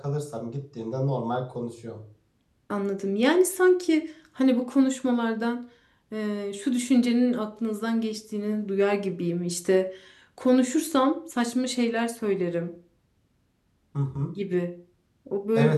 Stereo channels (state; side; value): identical; both; correlation 1.00